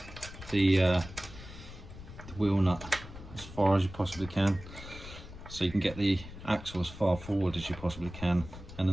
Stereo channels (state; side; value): noise; left; rumble, 14 dB below the sound